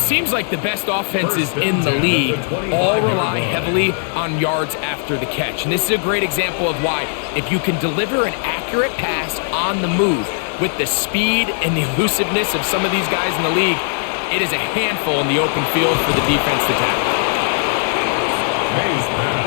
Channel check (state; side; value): silent; right; 66 dB below the other